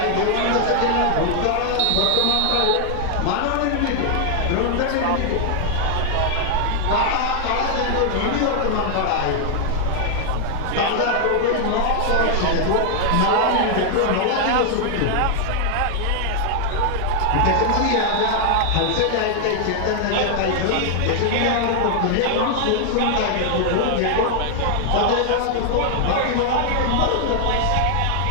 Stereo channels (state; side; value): different; both; correlation 0.00